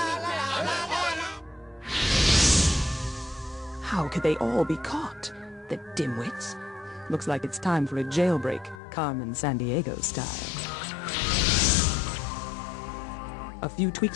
la, la, la, la, la. How could they all be caught? The dimwits. Looks like it's time for a jailbreak, Carmen Sandiego style. A few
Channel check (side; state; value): right; drops out; at 8.8 s